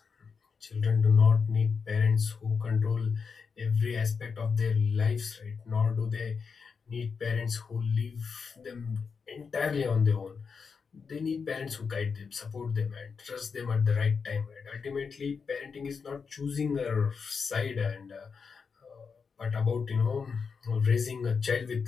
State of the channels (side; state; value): right; quieter; 5.5 dB